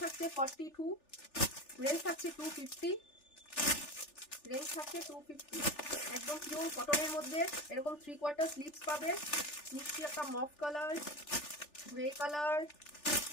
থাকছে, 42 রেঞ্জ থাকছে 250। রেঞ্জ থাকছে 250। একদম পিওর কটনের মধ্যে এরকম 3/4 স্লিভস পাবে। মিষ্টি একটা মফ colour, grey colour,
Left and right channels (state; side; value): late; right; 3.4 ms